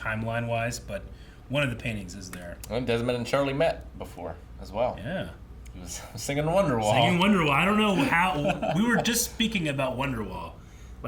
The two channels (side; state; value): both; identical; correlation 1.00